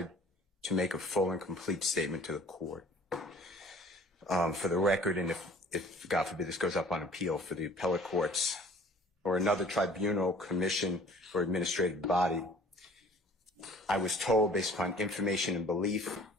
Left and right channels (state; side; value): normal; both; correlation 0.49